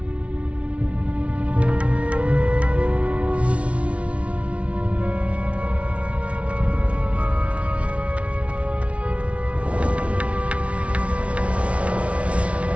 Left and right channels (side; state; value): left; late; 0.063 ms